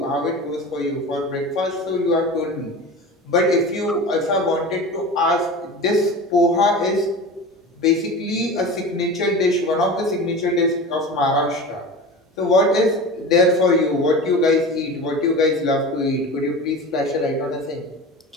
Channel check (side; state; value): both; normal; correlation 0.32